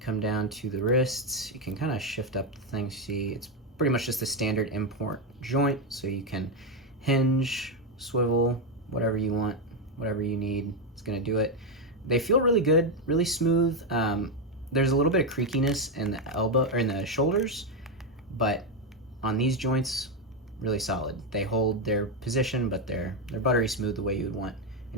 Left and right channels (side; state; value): both; normal; correlation 0.06